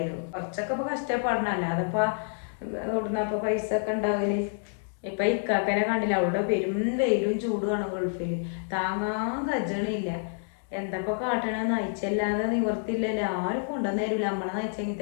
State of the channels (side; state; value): right; silent; digital silence